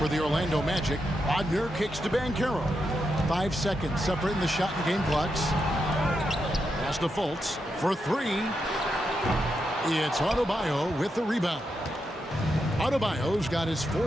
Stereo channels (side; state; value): both; normal; correlation 0.84